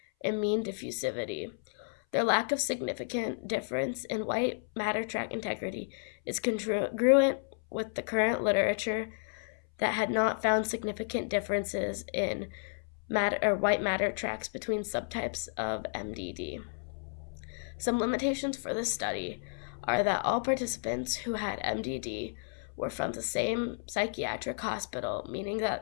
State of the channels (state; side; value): silent; right; 56 dB below the other